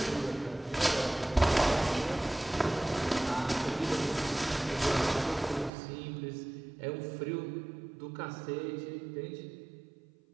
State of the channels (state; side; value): drops out; left; at 5.7 s